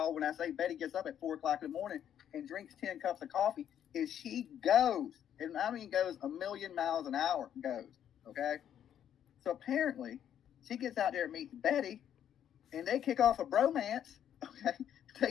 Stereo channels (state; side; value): quieter; right; 9.8 dB